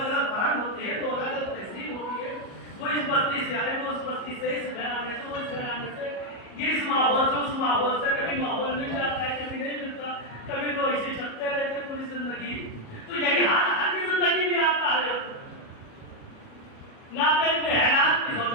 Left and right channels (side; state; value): right; late; 37 ms